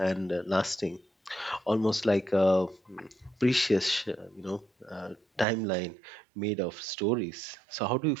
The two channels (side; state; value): left; drops out; at 5.5 s